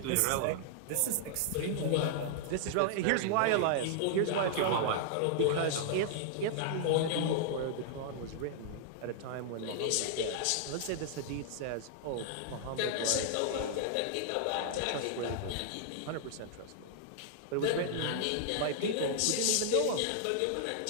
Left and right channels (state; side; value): different; both; correlation -0.01